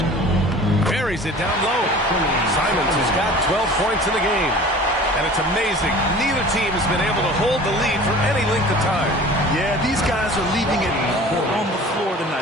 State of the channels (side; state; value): both; normal; correlation 0.43